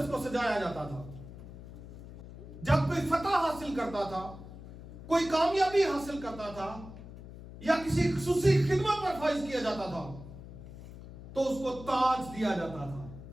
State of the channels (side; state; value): left; noise; hum, 14 dB below the sound